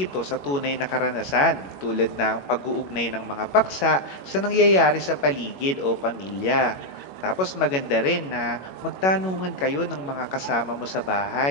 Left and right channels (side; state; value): right; late; 21 ms